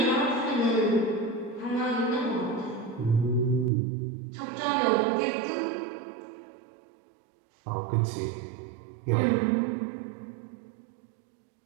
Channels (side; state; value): left; drops out; at 3.7 s